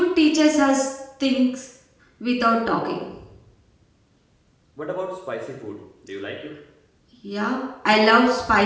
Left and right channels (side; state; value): both; identical; correlation 1.00